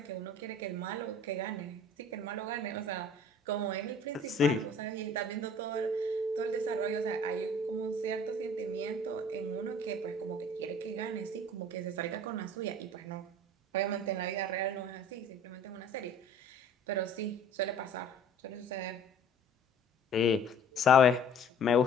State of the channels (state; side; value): normal; both; correlation 0.49